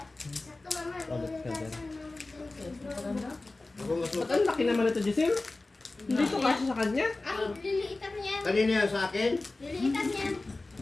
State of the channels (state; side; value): quieter; right; 3.2 dB